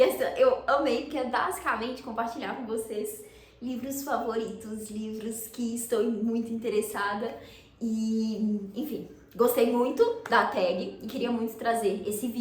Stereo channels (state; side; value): identical; both; correlation 1.00